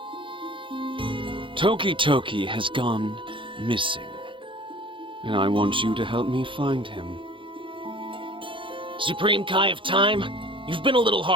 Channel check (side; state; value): left; late; 0.25 ms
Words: Toki has gone missing, and I want you to help me find him. Supreme Kai of Time, you've been a little